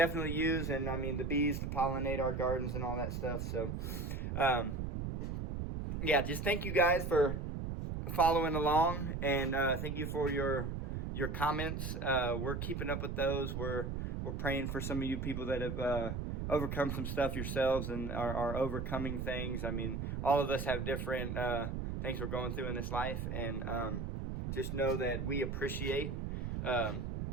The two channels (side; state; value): right; noise; rumble, 3 dB below the sound